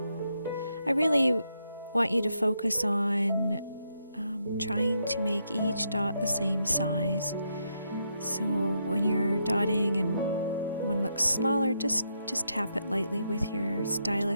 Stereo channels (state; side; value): inverted; both; correlation -0.80